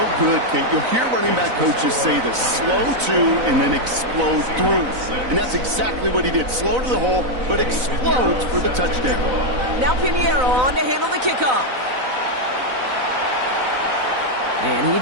good, Kate. You'll hear running back coaches say this: slow to and then explode through. And that's exactly what he did. Slow to the hole, but explodes for the touchdown. Now Pinheiro on to handle the kickoff. And he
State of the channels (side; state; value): left; late; 4.0 ms